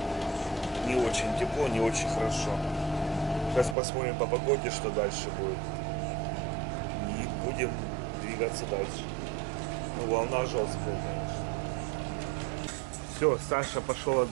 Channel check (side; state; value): left; drops out; at 3.8 s